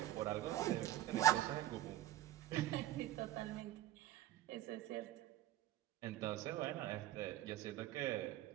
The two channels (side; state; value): left; quieter; 14.2 dB